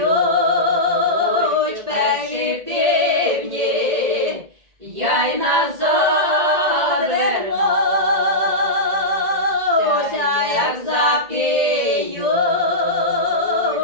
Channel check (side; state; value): left; late; 1.9 ms